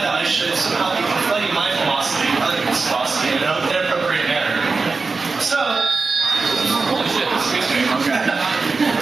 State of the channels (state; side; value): quieter; left; 4.2 dB